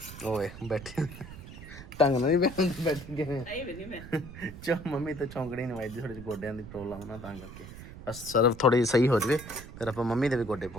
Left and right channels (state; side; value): noise; right; rumble, 14 dB below the sound